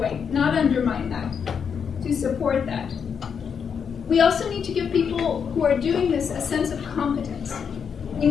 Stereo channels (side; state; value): right; quieter; 6.8 dB